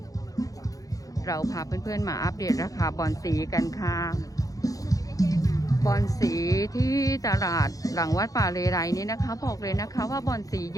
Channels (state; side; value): late; right; 0.17 ms